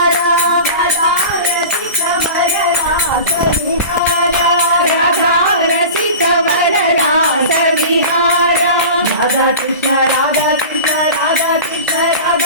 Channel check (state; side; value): inverted; both; correlation -0.34